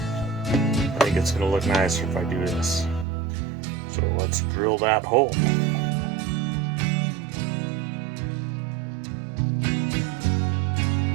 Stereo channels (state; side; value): drops out; left; at 3.1 s